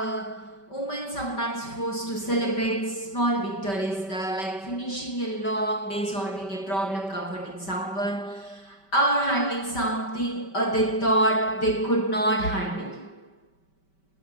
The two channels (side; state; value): right; late; 5.2 ms